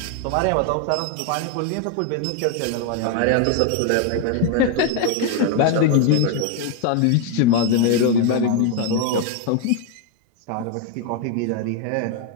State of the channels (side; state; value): both; different; correlation 0.01